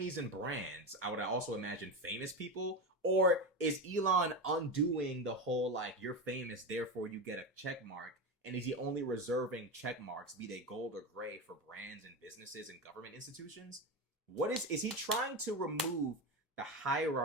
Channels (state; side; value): normal; both; correlation 0.18